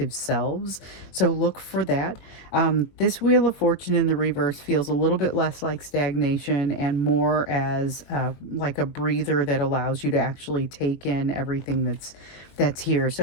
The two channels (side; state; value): right; late; 22 ms